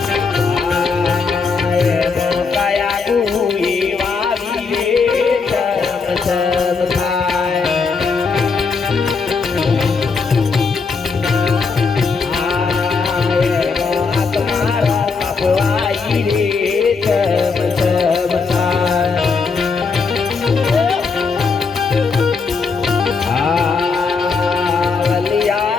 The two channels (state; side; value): quieter; right; 4.8 dB